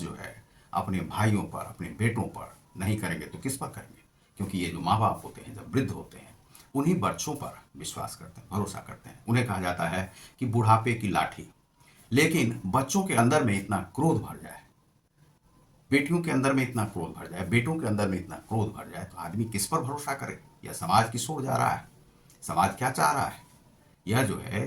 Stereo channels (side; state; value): both; identical; correlation 1.00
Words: जो है अपने भाइयों पर, अपने बेटों पर नहीं करेंगे तो किस पर करेंगे? क्योंकि ये जो माँ बाप होते हैं, जब वृद्ध होते हैं, उन्हीं बच्चों पर विश्वास करते हैं, भरोसा करते हैं। उन्हें कहा जाता है कि बुढ़ापे की लाठी। लेकिन बच्चों के अंदर में इतना क्रोध भर जाए, बेटियों के अंदर में इतना क्रोध भर जाए, बेटों के अंदर में इतना क्रोध भर जाए, तो आदमी किस पर भरोसा करे? यह समाज किस ओर जा रहा है? समाज क्या चाह रहा है? यह जो है